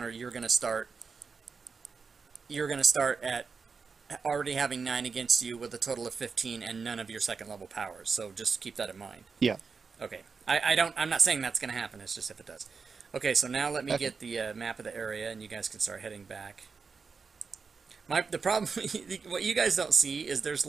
you're gonna start at already having 9 against you with a total of 15 and none of your second level powers. So just keep that in mind. Yeah. Okay. I'm not saying that's gonna happen. It's just if it does. Okay, so now let me get the map of the area, and you guys can start heading back. The problem, what you guys don't see is there's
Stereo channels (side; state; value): left; quieter; 5.2 dB